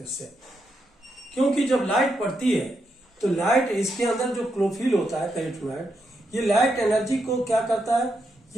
इससे, क्योंकि जब लाइट पड़ती है तो लाइट, इसके अंदर जो क्लोरोफिल होता है कैरोटीनॉइड, ये लाइट एनर्जी को क्या करता है,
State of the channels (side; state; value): both; normal; correlation 0.82